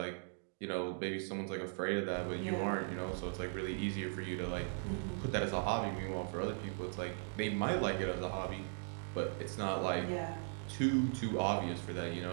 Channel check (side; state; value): left; silent; digital silence